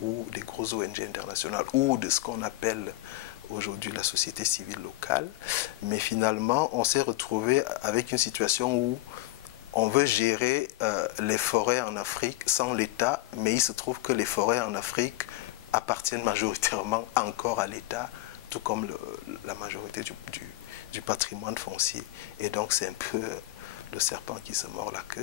ou des grosses ONG internationales ou de ce qu'on appelle aujourd'hui la société civile locale. Mais finalement, on s'est retrouvé avec une situation où on veut gérer les forêts en Afrique sans l'État, mais il se trouve que les forêts en Afrique appartiennent majoritairement encore à l'État, tout comme la majorité du patrimoine foncier. Et donc c'est un peu le serpent qui se mord la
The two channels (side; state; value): right; quieter; 18.2 dB